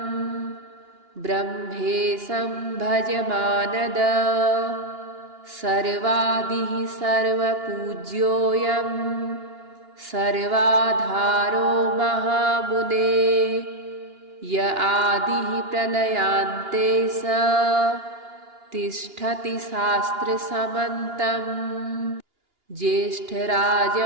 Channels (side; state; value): left; late; 2.8 ms